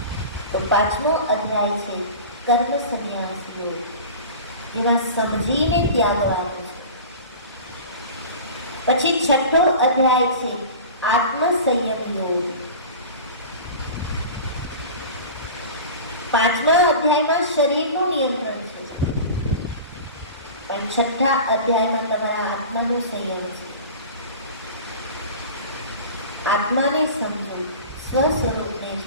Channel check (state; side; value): inverted; both; correlation -0.35